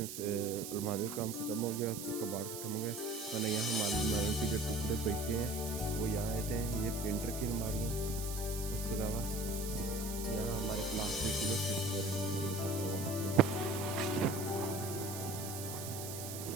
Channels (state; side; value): noise; right; hiss, 8 dB below the sound